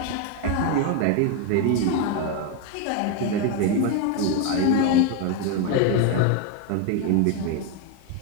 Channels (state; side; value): different; both; correlation 0.02